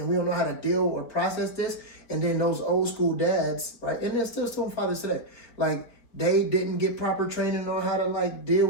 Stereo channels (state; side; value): late; right; 4.3 ms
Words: we don't know how to deal or process this. And then those old school dads, right, and they're still some fathers today, like they didn't get proper training on how to like deal